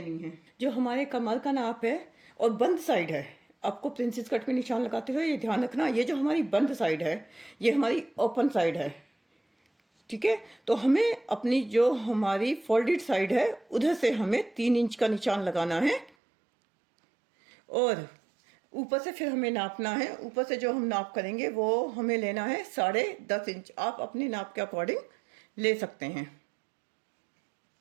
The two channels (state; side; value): drops out; left; at 16.1 s